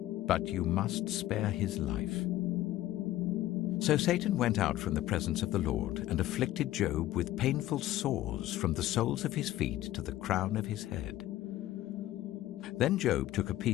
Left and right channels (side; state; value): right; quieter; 14.7 dB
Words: But you must spare his life." So Satan went out from the presence of the Lord and afflicted Job with painful sores from the soles of his feet to the crown of his head. Then Job took a